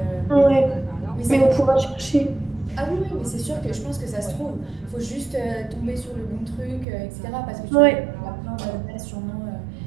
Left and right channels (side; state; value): left; drops out; at 6.9 s